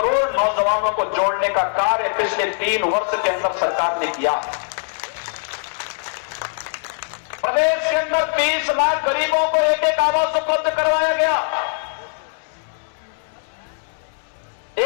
नौजवानों को जोड़ने का कार्य पिछले 3 वर्ष के अंदर सरकार ने किया। प्रदेश के अंदर 30 लाख गरीबों को एक आवास उपलब्ध करवाया गया।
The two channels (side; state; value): right; silent; 65 dB below the other